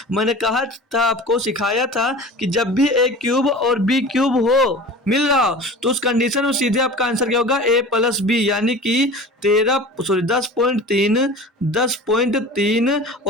मैंने कहा था, आपको सिखाया था कि जब भी a क्यूब और b क्यूब हो मिल रहा हो तो उस कंडीशन में सीधे आपका आंसर क्या होगा? a प्लस b, यानी कि 10.3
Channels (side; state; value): both; normal; correlation 0.38